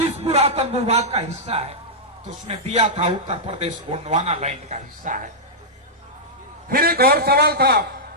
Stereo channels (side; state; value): both; normal; correlation -0.09